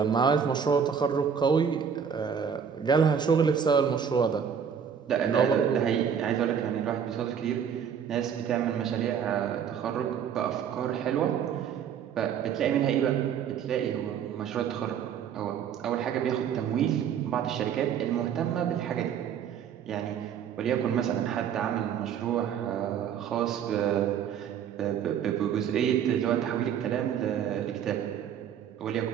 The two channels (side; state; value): left; quieter; 7.8 dB